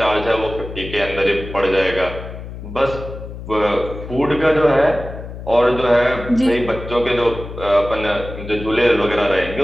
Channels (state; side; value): noise; left; hum, 11 dB below the sound